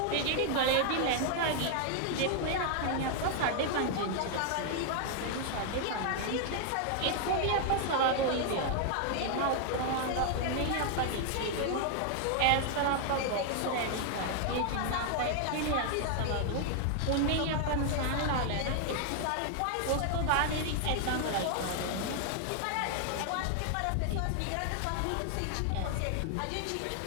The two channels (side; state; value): both; different; correlation 0.00